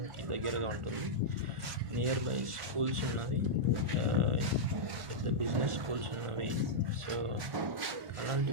దగ్గరగా ఉంటుంది. నియర్ బై స్కూల్స్ ఉన్నవి, పెద్ద బిజినెస్ స్కూల్స్ ఉన్నవి. సో అలాంటి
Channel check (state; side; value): late; left; 1.4 ms